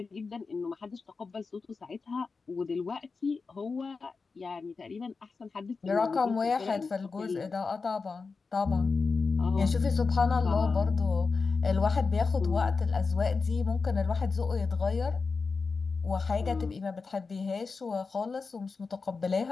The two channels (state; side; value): quieter; right; 4.5 dB